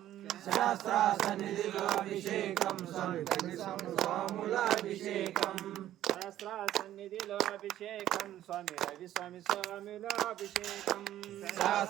శాస్త్ర సన్నిధిలో అభిషేకం స్వామి స్వాములాభిషేకం శాస్త్ర సన్నిధిలో అభిషేకం స్వామి రవి స్వామి స్వాములాభిషేకం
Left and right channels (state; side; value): quieter; left; 12.8 dB